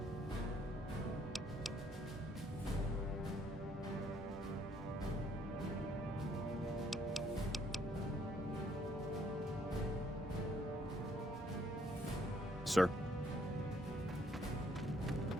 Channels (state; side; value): normal; both; correlation 0.67